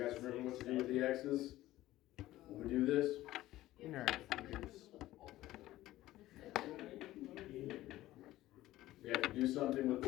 guys remember what to do with the x's when we do this? Nerd. We have to do something with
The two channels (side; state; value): right; quieter; 15.7 dB